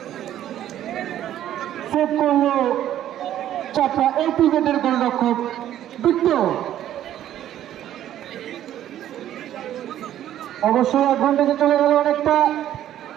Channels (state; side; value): quieter; left; 11.8 dB